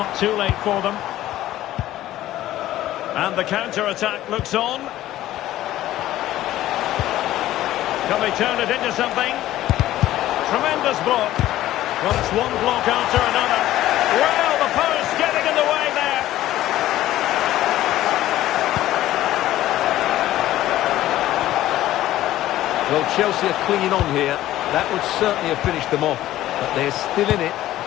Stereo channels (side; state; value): right; quieter; 14.3 dB